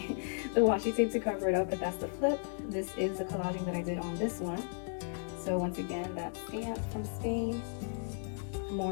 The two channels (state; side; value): silent; right; 55 dB below the other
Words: the washi tape to cover it up, but that's the flip. This is the collaging that I did on this one. So once again, that stamp from Spain.